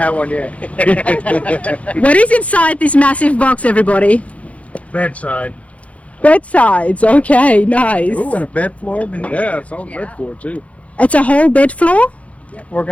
one yet. What is inside this massive box, everybody? Bedside. Bedsides. Okay, nice. Ooh, and a bed floor. Yeah, it's on bed floor too. It's a whole bed floor?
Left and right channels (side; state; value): right; late; 0.065 ms